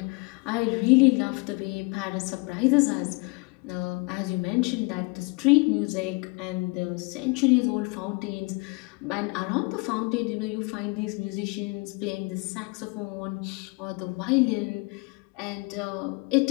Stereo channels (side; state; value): right; quieter; 28.6 dB